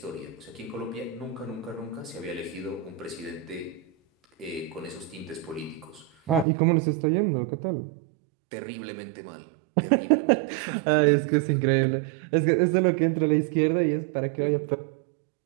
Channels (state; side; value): drops out; left; at 6.5 s